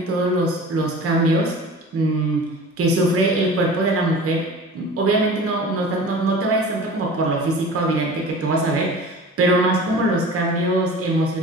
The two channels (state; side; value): normal; both; correlation 0.39